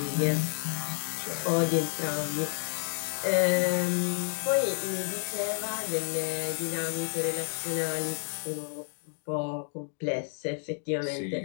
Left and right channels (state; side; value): silent; right; 57 dB below the other